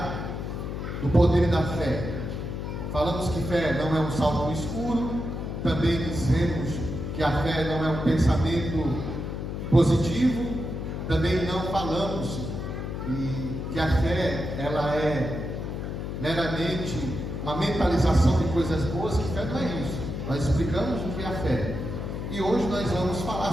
do poder da fé. Falamos que fé não é um salto no escuro. Também dizemos que a fé não é um pensamento positivo. Também não falamos que a fé ela é meramente uma mentalização de coisas boas, que fé não é isso. Nós explicamos o que é a fé. E hoje nós vamos falar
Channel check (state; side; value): noise; left; hum, 5 dB below the sound